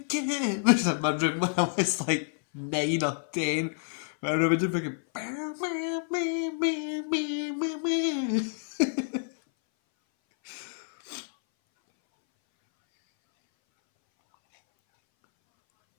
Which was in my room when I was like 9 or 10. I remember just thinking.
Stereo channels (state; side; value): silent; right; 59 dB below the other